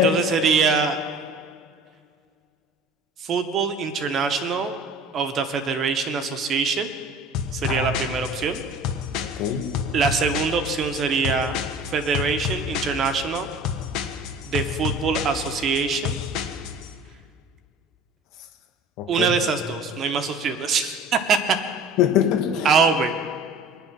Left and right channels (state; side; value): normal; both; correlation 0.43